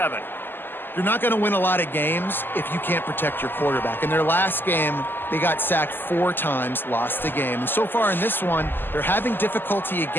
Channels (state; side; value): late; right; 0.095 ms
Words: You're not going to win a lot of games if you can't protect your quarterback. In their last game, they got sacked 4 times, lost the game. And so far in this one, they're having difficulty